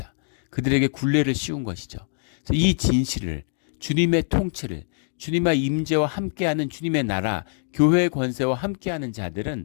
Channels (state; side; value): silent; right; digital silence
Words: 그들에게 굴레를 씌운 것이죠. 그래서 이 진실을, 주님의 통치를, 주님의 임재와 함께하는 주님의 나라, 교회의 권세와 함께하는